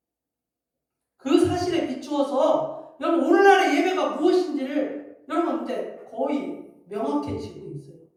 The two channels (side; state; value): both; identical; correlation 1.00